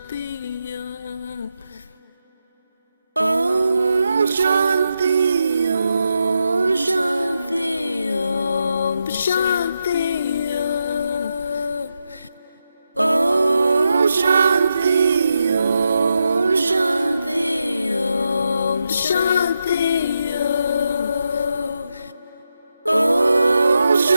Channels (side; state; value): both; inverted; correlation -0.86